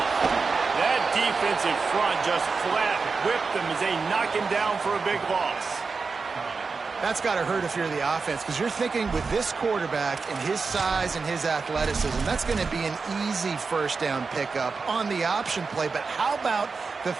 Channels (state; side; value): quieter; left; 4.7 dB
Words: That defensive front just flat whipped them as they knock him down for a big loss. That's got to hurt if you're the offense, because you're thinking with this quarterback and his size and his athleticism, that's going to be an easy first down pickup on the option play. But how about the